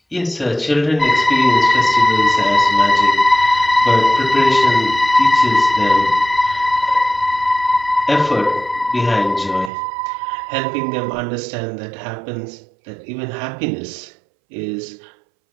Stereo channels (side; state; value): left; drops out; at 9.7 s